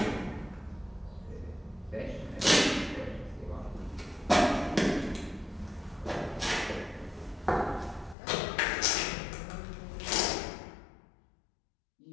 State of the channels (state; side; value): drops out; right; at 8.2 s